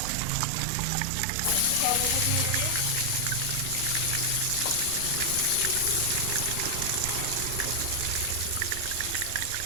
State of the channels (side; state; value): both; different; correlation 0.00